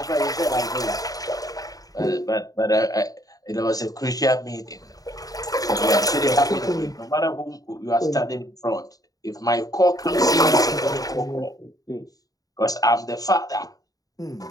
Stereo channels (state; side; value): late; right; 0.18 ms